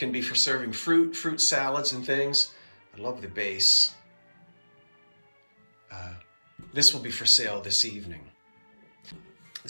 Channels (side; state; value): both; inverted; correlation -1.00